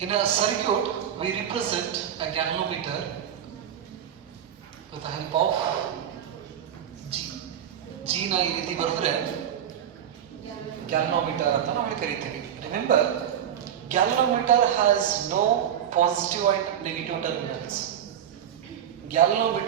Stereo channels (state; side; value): quieter; left; 9.7 dB